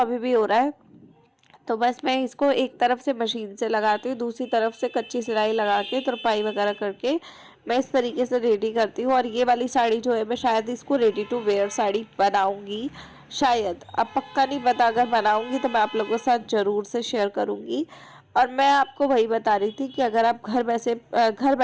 भी हो रहा है। तो बस मैं इसको एक तरफ से मशीन से लगाती हूँ, दूसरी तरफ से कच्ची सिलाई लगा के तुरपाई वगैरह करके मैं इस तरीके से रेडी करती हूँ। और ये वाली साड़ी जो है मैं शायद इसको रेडी टू वेयर साड़ी बनाऊँगी, शायद, अब पक्का नहीं पता। अगर बनाऊँगी तो मैं आप लोगों के साथ ज़रूर से शेयर करूँगी। और मैं आपको वही बता रही थी कि अगर आप घर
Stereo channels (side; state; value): both; identical; correlation 1.00